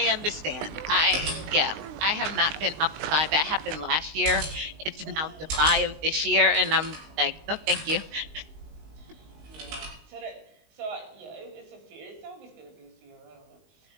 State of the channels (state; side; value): late; left; 19 ms